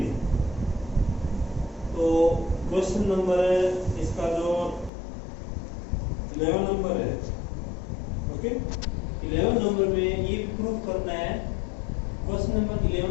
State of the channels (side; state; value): right; drops out; at 4.9 s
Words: तो question number इसका जो 11 number है, okay, 11 number में ये proof करना है. क्वेश्चन नंबर